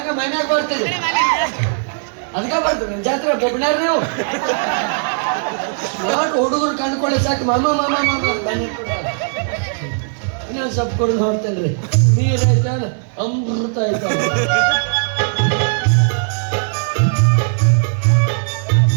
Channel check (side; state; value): left; silent; digital silence